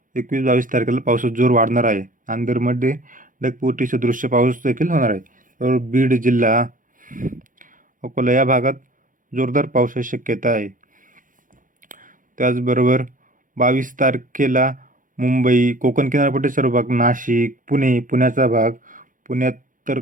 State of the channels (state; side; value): late; left; 0.39 ms